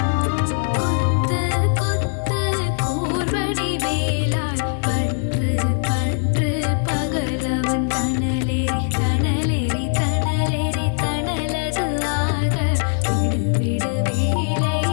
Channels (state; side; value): silent; right; digital silence